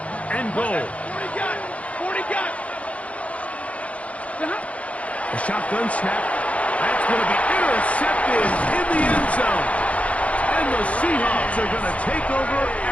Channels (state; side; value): late; right; 0.065 ms